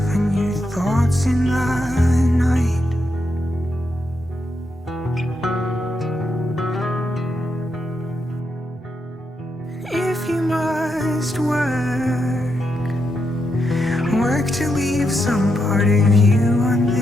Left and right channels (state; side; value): normal; both; correlation 0.83